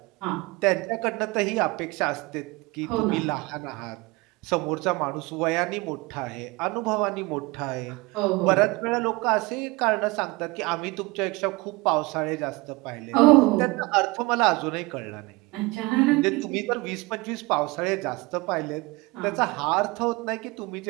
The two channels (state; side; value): quieter; left; 23.7 dB